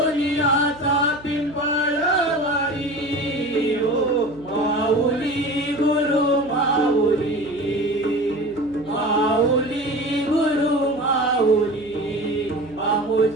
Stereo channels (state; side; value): noise; right; hum, 22 dB below the sound